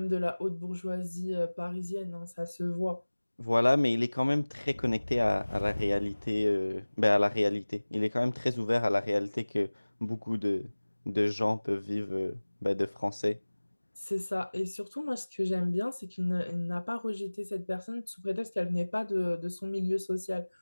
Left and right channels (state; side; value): inverted; both; correlation -1.00